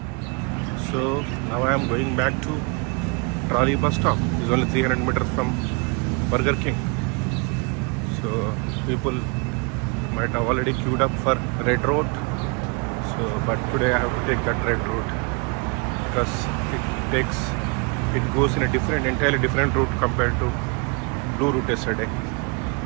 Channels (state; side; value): quieter; left; 32.0 dB